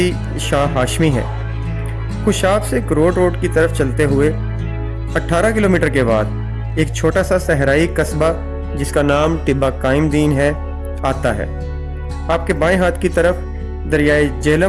शाह हाशमी है। खुशाब से करोड़ रोड की तरफ चलते हुए 18 किलोमीटर के बाद एक छोटा सा सहराई कस्बा जिसका नाम टिब्बा कायम दीन है आता है। आपके बाएं हाथ की तरफ दरियाए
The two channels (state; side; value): identical; both; correlation 1.00